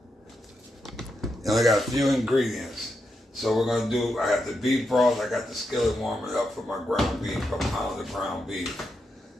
And I got a few ingredients. So we're gonna do, I got the beef broth, I got the skillet warming up for my ground beef, a pound of ground beef.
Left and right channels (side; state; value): both; normal; correlation 0.84